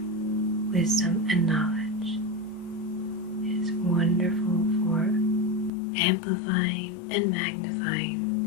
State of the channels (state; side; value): drops out; right; at 5.7 s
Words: wisdom and knowledge. Wonderful for amplifying and magnifying